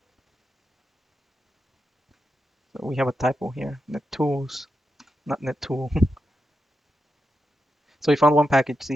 So we have a typo here. NetTools, not NetTool. So we found one package.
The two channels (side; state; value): both; normal; correlation 0.87